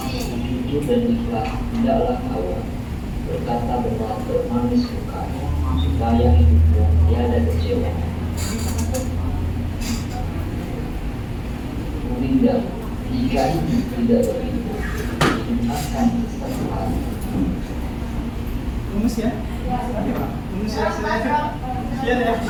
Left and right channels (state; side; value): identical; both; correlation 1.00